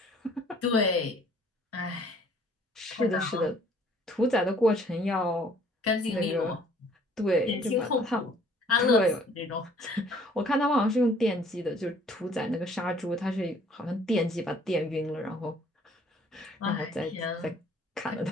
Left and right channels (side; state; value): both; normal; correlation 0.57